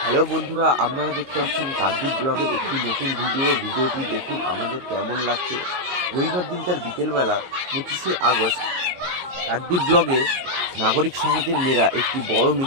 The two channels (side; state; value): left; late; 22 ms